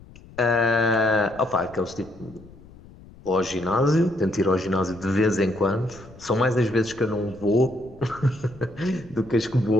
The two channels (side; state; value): left; noise; rumble, 21 dB below the sound